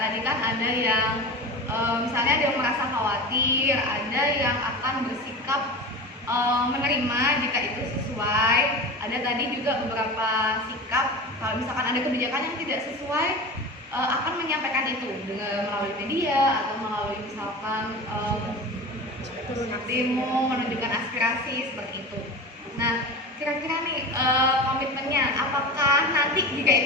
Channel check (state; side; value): normal; both; correlation 0.30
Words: kan ada yang misalnya ada yang merasa khawatir, ada yang akan bersikap menerima jika itu sesuai. Ada tadi juga beberapa sikap kalau misalkan ada kebijakan yang tidak sesuai akan menyampaikan itu dengan melalui media atau melalui misalkan demo menunjukkan aspirasi seperti itu. Nah kira-kira nih komitmennya apakah nanti jika